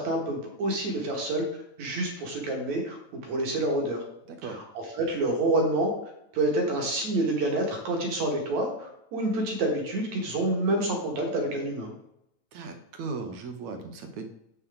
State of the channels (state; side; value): late; left; 9.0 ms